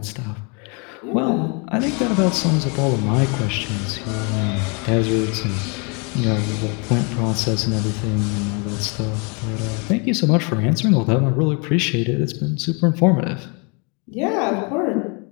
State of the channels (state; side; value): quieter; right; 33.4 dB